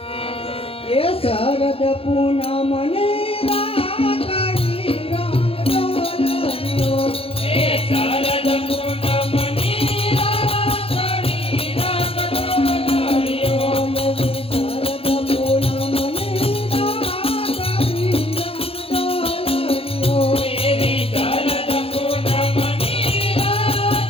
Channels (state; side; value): late; right; 0.27 ms